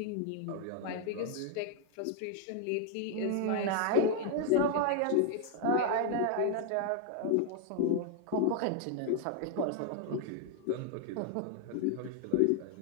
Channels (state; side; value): different; both; correlation 0.00